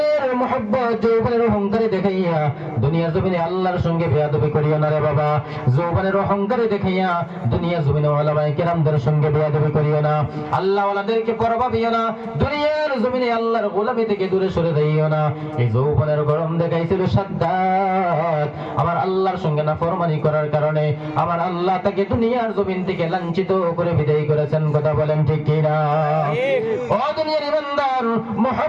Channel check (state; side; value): identical; both; correlation 1.00